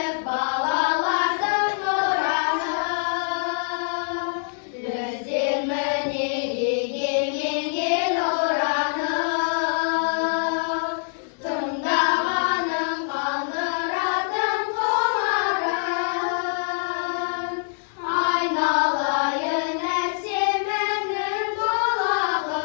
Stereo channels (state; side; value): silent; right; 62 dB below the other